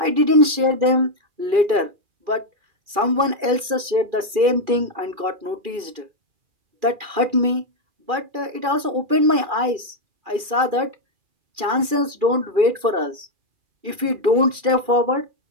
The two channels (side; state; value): left; late; 2.4 ms